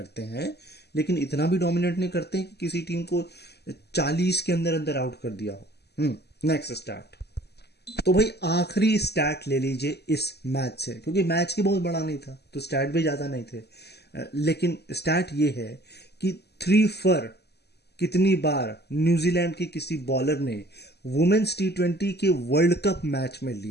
हैं, लेकिन इतना भी डोमिनेट नहीं करते हैं कि किसी टीम को 40 के अंदर अंदर आउट कर दिया हो। Next stat. तो भाई आखिरी स्टैट ले लीजिए इस मैच से, क्योंकि मैच की बहुत बड़ा नहीं था तो स्टैट भी ज्यादा नहीं थे, लेकिन स्टैट ये है कि 3 फर कितनी बार न्यूजीलैंड के किसी बॉलर ने वुमेन्स T20 के वर्ल्ड कप मैच में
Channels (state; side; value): late; right; 0.48 ms